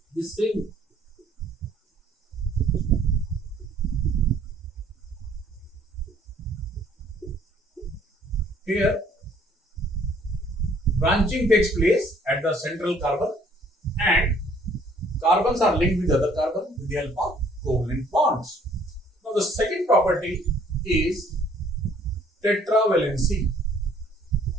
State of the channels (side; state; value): both; normal; correlation 0.60